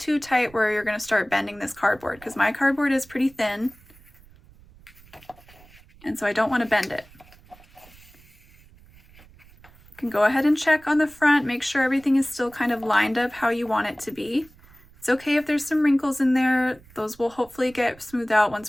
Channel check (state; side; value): noise; right; rumble, 25 dB below the sound